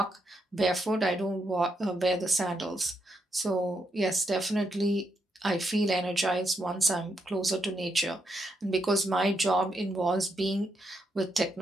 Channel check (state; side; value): normal; both; correlation 0.80